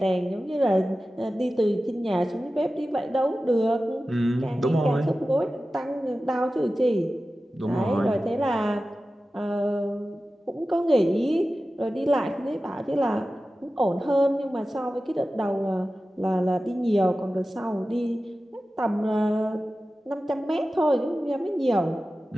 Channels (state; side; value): normal; both; correlation 0.95